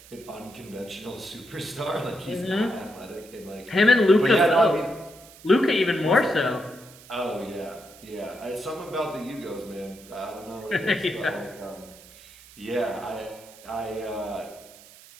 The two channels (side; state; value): right; noise; hiss, 21 dB below the sound